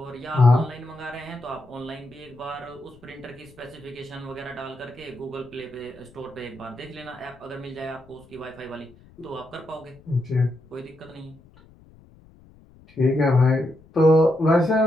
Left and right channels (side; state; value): left; noise; rumble, 25 dB below the sound